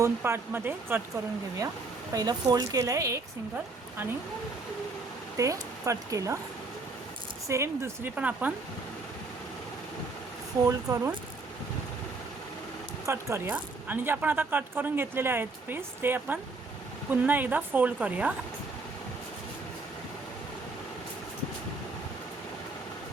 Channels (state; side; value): quieter; left; 3.7 dB